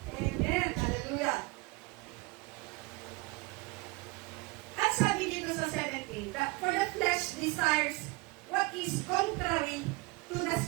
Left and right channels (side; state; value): left; quieter; 24.8 dB